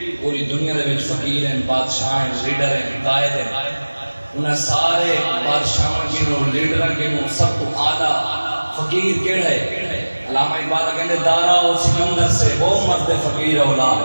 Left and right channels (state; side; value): inverted; both; correlation -1.00